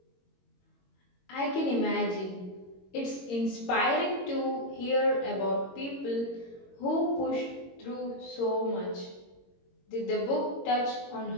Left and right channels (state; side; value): late; right; 22 ms